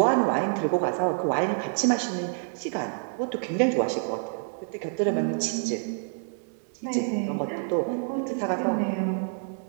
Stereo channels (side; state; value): left; silent; 58 dB below the other